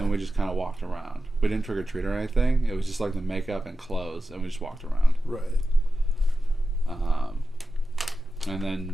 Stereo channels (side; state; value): both; normal; correlation 0.92